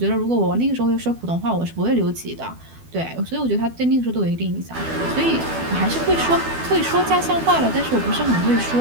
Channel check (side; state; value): left; late; 12 ms